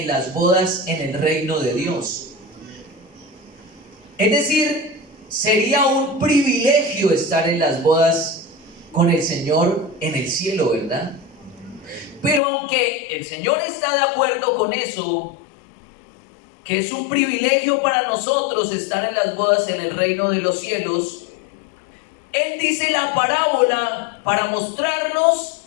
las bodas en el reino de Dios. Es decir, sería un privilegio estar en las bodas con el Señor en el cielo, ¿verdad? Pero aunque el Señor está de acuerdo con eso, que es un privilegio para nosotros estar en las bodas en el reino de los cielos, Él dice la parábola para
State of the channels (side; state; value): right; drops out; at 12.4 s